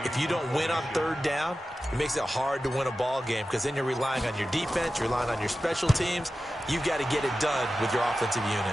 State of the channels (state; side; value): normal; both; correlation 0.93